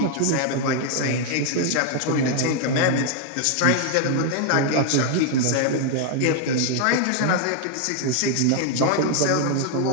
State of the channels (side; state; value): both; different; correlation 0.00